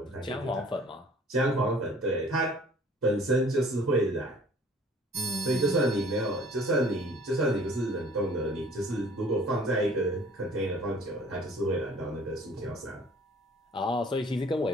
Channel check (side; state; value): both; normal; correlation 0.52